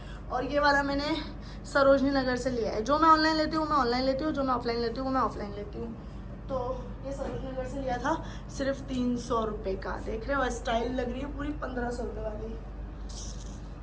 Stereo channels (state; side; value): identical; both; correlation 1.00